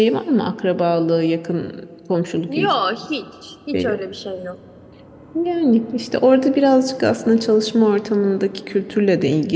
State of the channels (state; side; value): identical; both; correlation 1.00